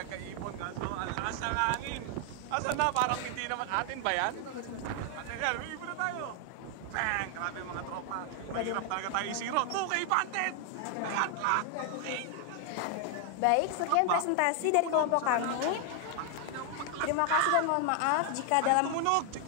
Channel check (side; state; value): both; different; correlation 0.00